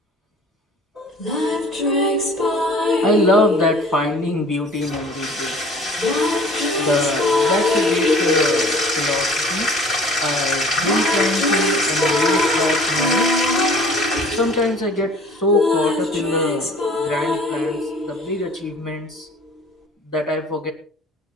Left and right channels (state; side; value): normal; both; correlation 0.48